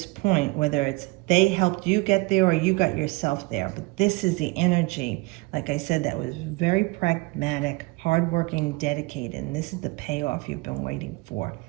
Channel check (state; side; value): quieter; left; 23.8 dB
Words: point, whether it's they helped you get there or you got yourself there. But this is the energy, like I said, that was very pragmatic, hardworking, dedicated. And this is the payoff you've been waiting for.